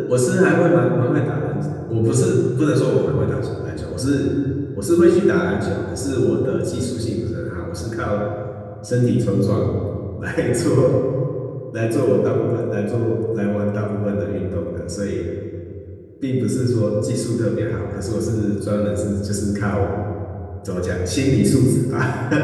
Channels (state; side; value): identical; both; correlation 1.00